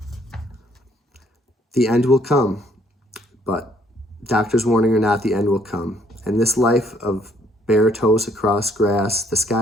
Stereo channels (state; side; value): normal; both; correlation 0.65